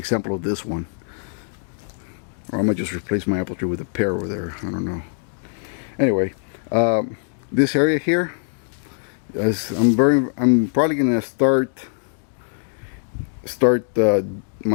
of this one. Or I might just replace my apple tree with a pear over there. I don't know. Anyway. This area here, I'm probably gonna start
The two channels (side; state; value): right; silent; digital silence